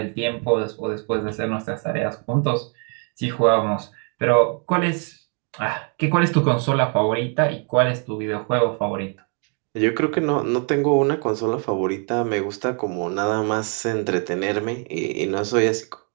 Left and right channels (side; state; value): left; quieter; 39.1 dB